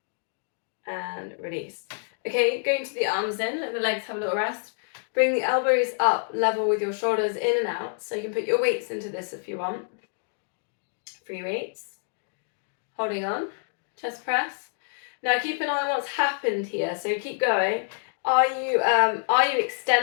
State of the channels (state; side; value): silent; right; 60 dB below the other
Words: And release. Okay, going to the arms in, let the legs have a little rest. Bring the elbows up, level with your shoulders in and out. So you can put your weights into this if you want. Free weights. Holding on. Chest press. Now keep an eye on what's happened here. So keep going. Are you